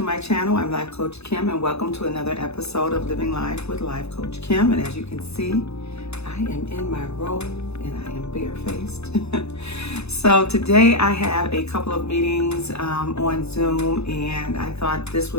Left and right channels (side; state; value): right; late; 0.80 ms